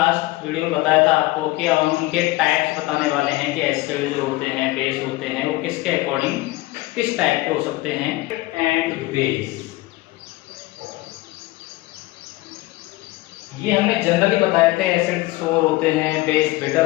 वीडियो में बताया था आपको कि अब हम उनके टाइप्स बताने वाले हैं कि एसिड जो होते हैं, बेस होते हैं, वो किसके अकॉर्डिंग किस टाइप के हो सकते हैं। एंड बेस ये हमने जनरली बताए थे, एसिड सोर होते हैं, बेस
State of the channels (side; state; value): right; quieter; 19.4 dB